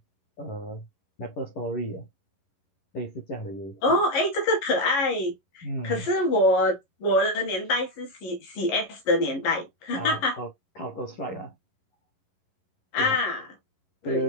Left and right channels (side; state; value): right; late; 11 ms